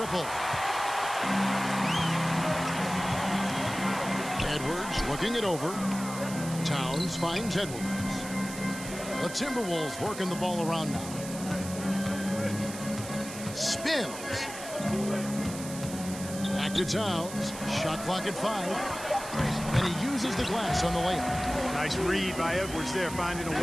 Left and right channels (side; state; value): right; noise; hiss, 11 dB below the sound